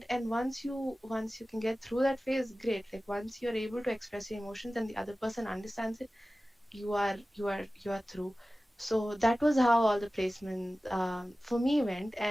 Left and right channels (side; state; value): both; normal; correlation 0.96